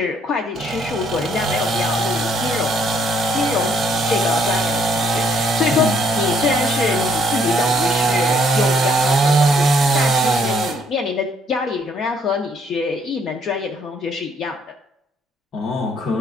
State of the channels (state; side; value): normal; both; correlation 0.67